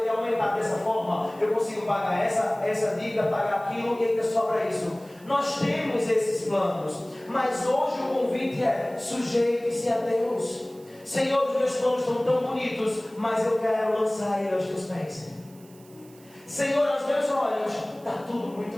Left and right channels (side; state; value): right; noise; hiss, 26 dB below the sound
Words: aumentar dessa forma, eu consigo pagar essa dívida, pagar aquilo e ainda sobra isso. Nós temos esses planos, mas hoje o convite é: sujeite-se a Deus. Senhor, os meus planos estão tão bonitos, mas eu quero lançar ele aos teus pés. Senhor, aos meus olhos está tudo